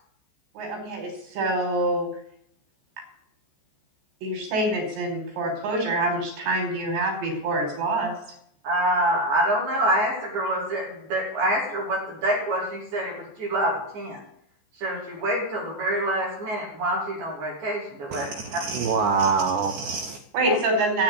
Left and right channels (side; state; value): left; late; 14 ms